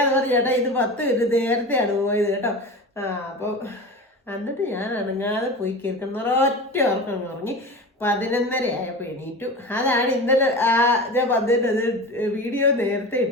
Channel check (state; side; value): normal; both; correlation 0.31